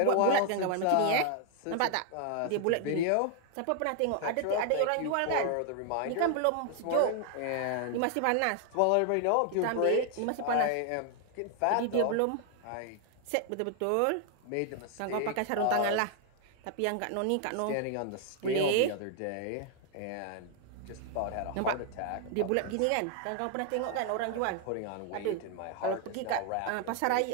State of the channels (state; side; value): different; both; correlation 0.00